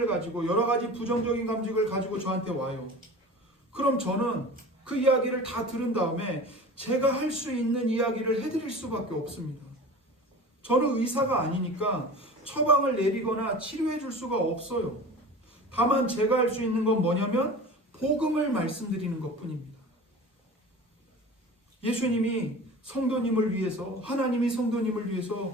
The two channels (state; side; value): normal; both; correlation 0.37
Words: 가지고 여러 가지 부정적인 감정을 가지고 저한테 와요. 그럼 저는 그 이야기를 다 들은 다음에 제가 할 수 있는 이야기를 해드릴 수밖에 없습니다. 저는 의사가 아니니까 처방을 내리거나 치료해 줄 수가 없어요. 다만 제가 할 수 있는 건 뭐냐면 복음을 말씀드리는 것뿐입니다. 예수님이 성도님을 위해서, 하나님이 성도님을